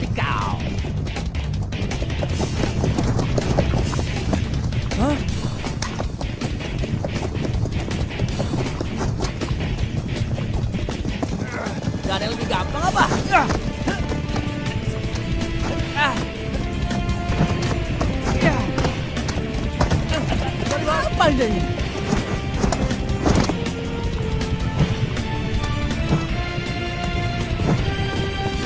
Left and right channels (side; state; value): both; identical; correlation 1.00